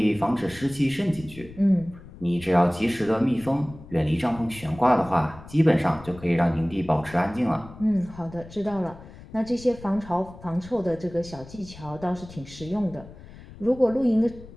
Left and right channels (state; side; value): noise; left; rumble, 18 dB below the sound